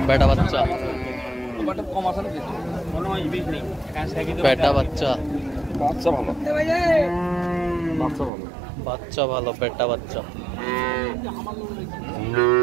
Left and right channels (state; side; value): drops out; left; at 8.3 s